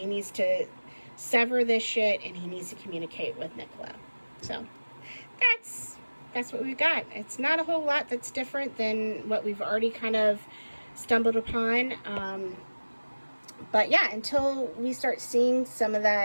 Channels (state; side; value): inverted; both; correlation -1.00